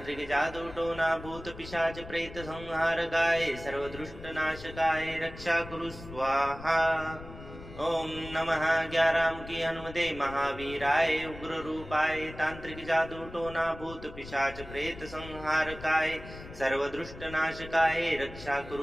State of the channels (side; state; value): left; noise; rumble, 14 dB below the sound